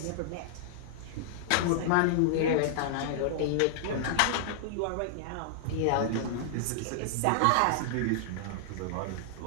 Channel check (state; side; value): different; both; correlation -0.01